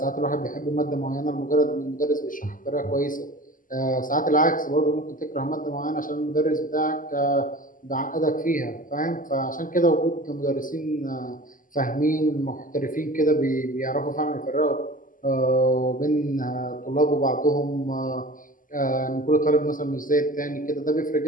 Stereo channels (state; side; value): late; right; 0.39 ms